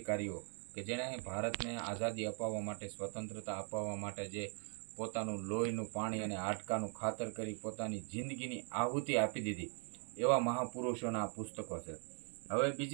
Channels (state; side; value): quieter; left; 39.6 dB